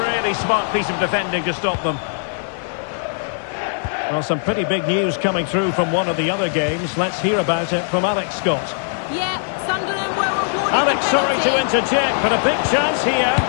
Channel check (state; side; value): silent; right; digital silence